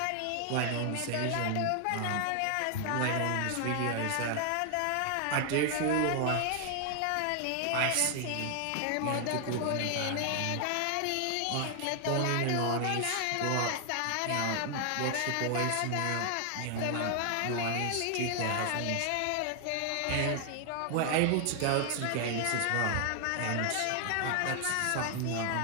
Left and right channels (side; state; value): both; different; correlation 0.00